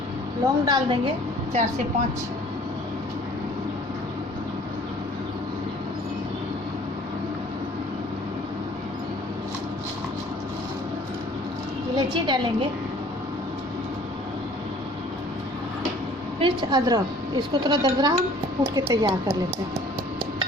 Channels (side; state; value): both; normal; correlation 0.53